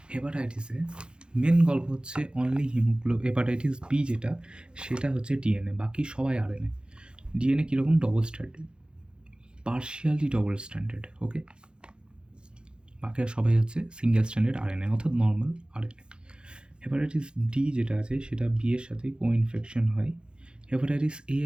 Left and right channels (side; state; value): left; late; 0.050 ms